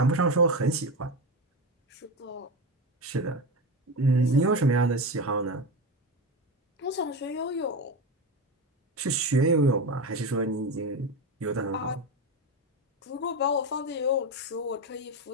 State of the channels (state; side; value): normal; both; correlation 0.19